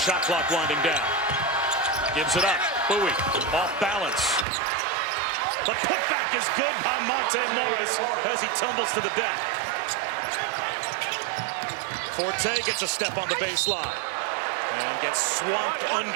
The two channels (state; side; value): drops out; left; at 4.5 s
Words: clock winding down. Gives it up. Bowie off balance. The putback is good by Monte Morris as he tumbles to the deck. Forte gets a step on the baseline and gets swamped